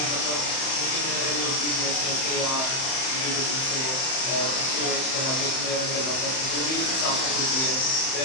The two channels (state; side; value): late; right; 31 ms